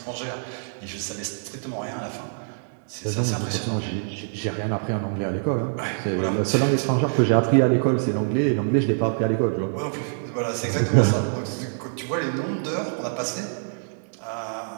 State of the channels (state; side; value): silent; left; digital silence